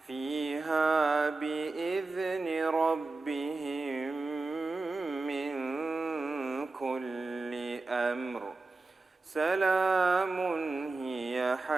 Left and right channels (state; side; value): quieter; left; 3.5 dB